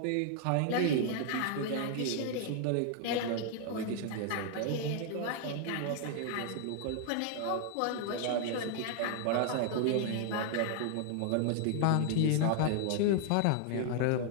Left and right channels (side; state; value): both; different; correlation 0.00